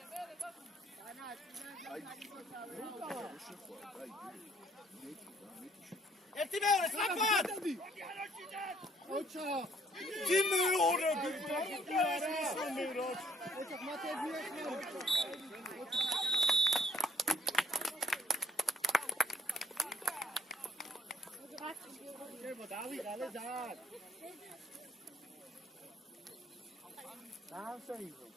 ერთი მეორე სწრაფად! ოჩა Τι με ώρα που ოჩა მათე დავიღალე ძალიან. დაასაიდო,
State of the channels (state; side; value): normal; both; correlation 0.65